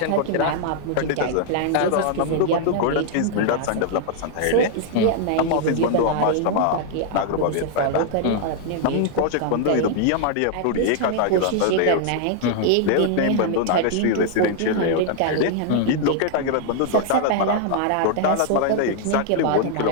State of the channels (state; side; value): different; both; correlation 0.00